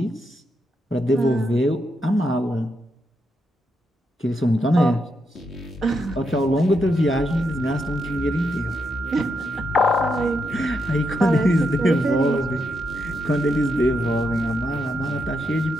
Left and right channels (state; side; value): normal; both; correlation 0.81